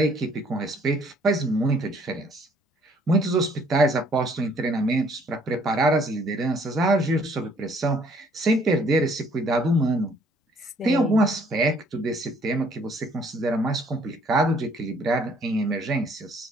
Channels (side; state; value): both; normal; correlation 0.62